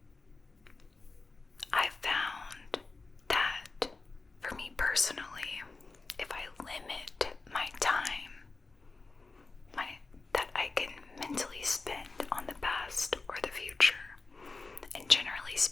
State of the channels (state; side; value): quieter; right; 3.8 dB